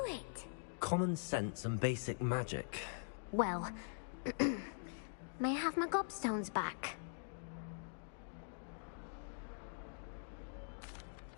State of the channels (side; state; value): right; silent; digital silence